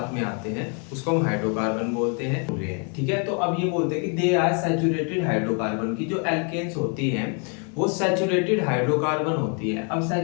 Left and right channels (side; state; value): right; quieter; 38.4 dB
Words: में आते हैं उसको हम हाइड्रोकार्बन बोलते हैं। ठीक है, तो अब ये बोलते हैं कि दे आर सैचुरेटेड हाइड्रोकार्बन की जो एल्केन्स होती हैं वो सैचुरेटेड हाइड्रोकार्बन होती है। अब